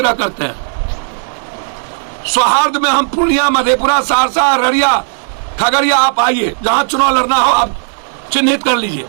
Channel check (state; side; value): silent; left; digital silence